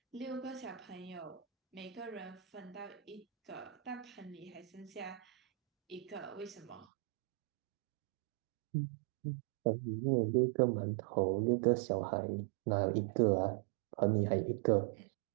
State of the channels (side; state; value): left; drops out; at 6.9 s